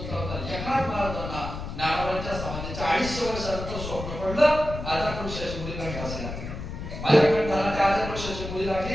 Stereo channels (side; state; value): left; noise; rumble, 7 dB below the sound